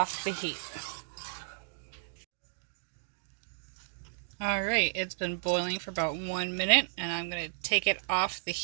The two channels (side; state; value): left; silent; digital silence